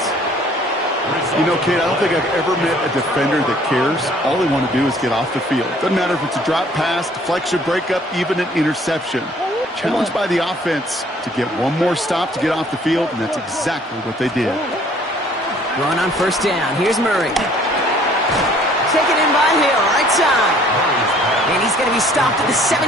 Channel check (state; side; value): normal; both; correlation 0.57